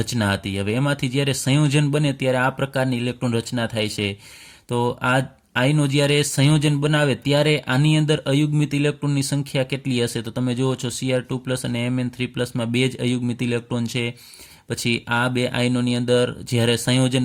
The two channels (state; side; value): identical; both; correlation 1.00